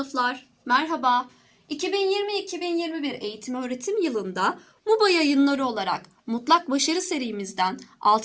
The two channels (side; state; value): both; identical; correlation 1.00